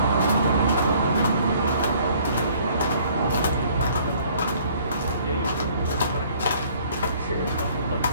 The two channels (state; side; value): inverted; both; correlation -0.57